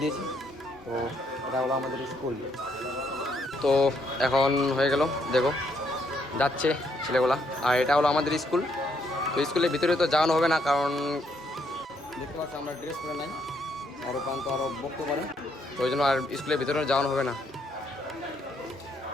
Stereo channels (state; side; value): normal; both; correlation 0.73